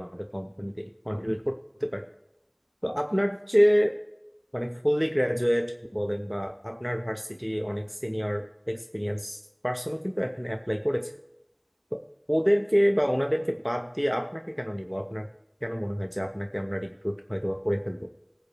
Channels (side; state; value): both; identical; correlation 1.00